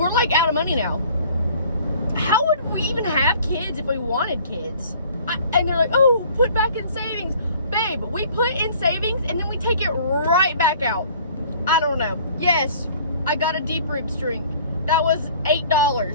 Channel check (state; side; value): inverted; both; correlation -0.52